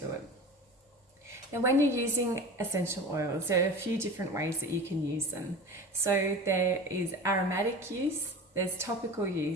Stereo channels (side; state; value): both; normal; correlation 0.34